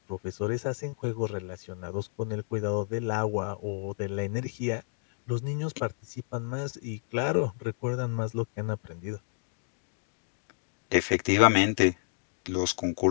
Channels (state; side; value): silent; right; digital silence